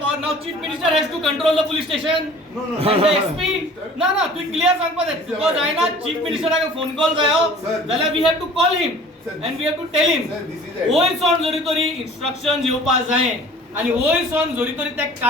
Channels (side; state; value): both; normal; correlation 0.47